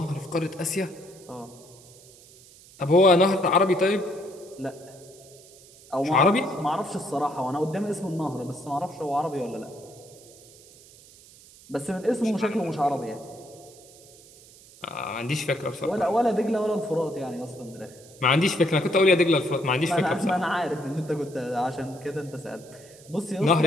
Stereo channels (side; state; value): right; noise; hiss, 23 dB below the sound